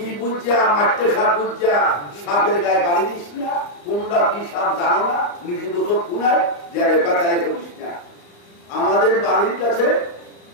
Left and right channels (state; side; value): late; right; 34 ms